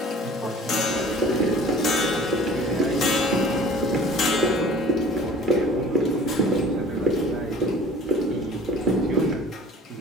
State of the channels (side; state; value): both; normal; correlation 0.48